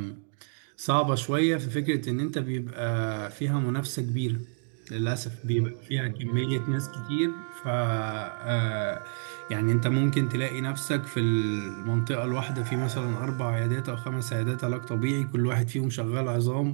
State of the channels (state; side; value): silent; left; digital silence